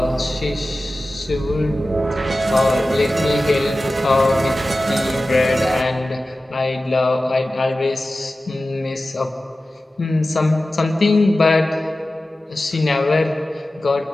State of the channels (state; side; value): normal; both; correlation 0.95